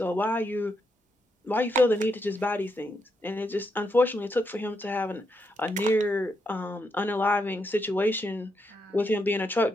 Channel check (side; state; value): both; normal; correlation 0.81